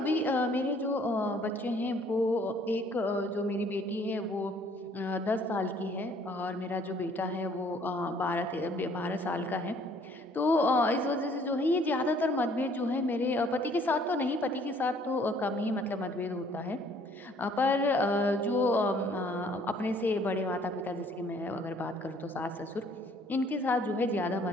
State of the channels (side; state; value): both; normal; correlation 0.59